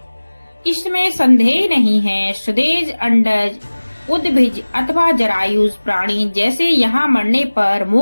इसमें संदेह नहीं है। सुदेज, अंडज, उद्भिज अथवा जरायुज प्राणी जैसे यहाँ मरने पर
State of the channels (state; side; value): inverted; both; correlation -1.00